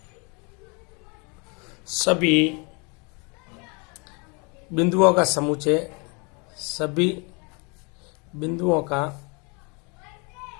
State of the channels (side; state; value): right; quieter; 32.0 dB